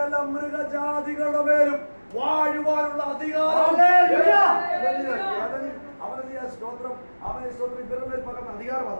മൃഗജാതികളുടെ മേലും വാഴുവാനുള്ള അധികാരം അവരല്ലേ സ്തോത്രം അവനെ സ്തോത്രം ഇവരുടെ മേൽ പകർന്ന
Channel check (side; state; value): both; inverted; correlation -1.00